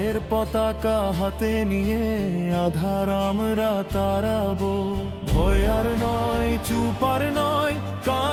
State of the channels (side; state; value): both; identical; correlation 1.00